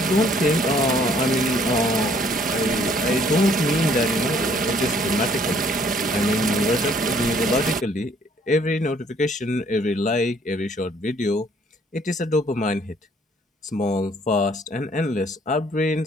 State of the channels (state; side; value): normal; both; correlation 0.62